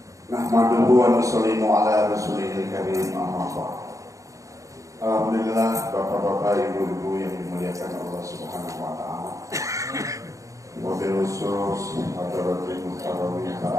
wa nusallimu ala rasulihil karim, amma ba'd. Alhamdulillah, bapak-bapak, ibu-ibu yang dimuliakan Allah Subhanahu wa taala. Wabil khusus hadirin muhtaromin,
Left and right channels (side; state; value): left; late; 0.16 ms